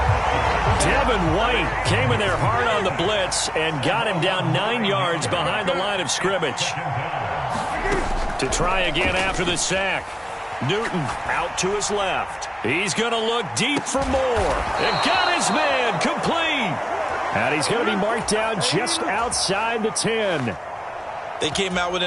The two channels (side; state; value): both; identical; correlation 1.00